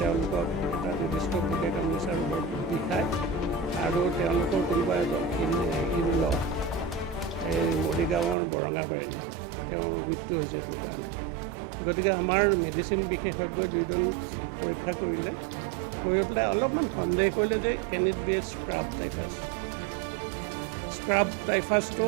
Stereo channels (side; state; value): left; drops out; at 8.3 s